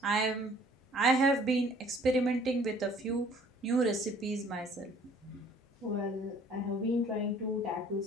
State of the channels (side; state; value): both; normal; correlation 0.55